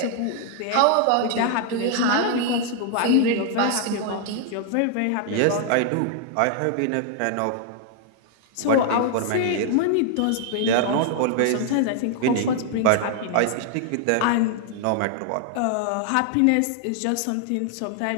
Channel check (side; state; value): both; different; correlation 0.00